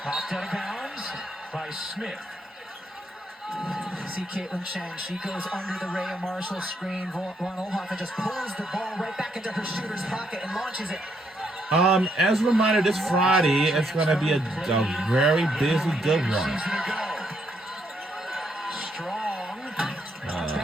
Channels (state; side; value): normal; both; correlation 0.75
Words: Popped out of bounds by Smith. See Caitlin Chen, she goes under the Rhea Marshall screen. Von Ohoffen just pulls the ball right back into her shooter's pocket and launches it. As a reminder, this Friday it's gonna be a very busy, good one. Season ago. Strong.